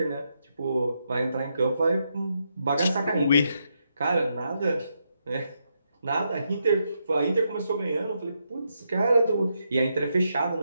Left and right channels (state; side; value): inverted; both; correlation -0.81